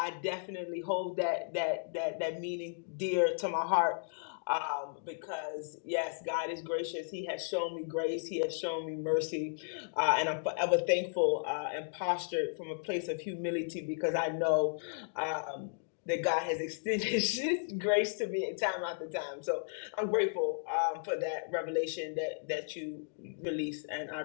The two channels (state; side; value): silent; right; digital silence